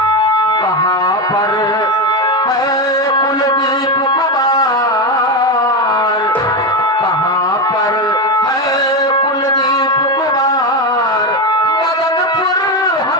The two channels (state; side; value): normal; both; correlation 0.12